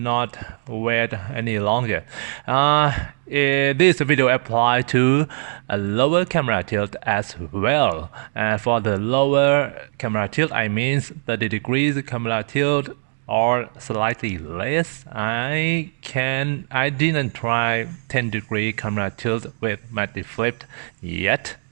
wait any longer. This video applies to a lower camera tilt as well. For the lower camera tilt, I mean 30 degrees camera tilt or slightly less. I didn't try 10-degree camera tilt with MattyFlip yet,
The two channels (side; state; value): left; silent; digital silence